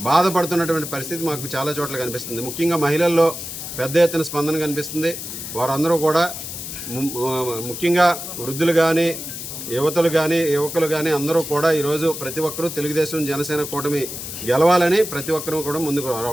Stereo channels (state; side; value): noise; left; hiss, 8 dB below the sound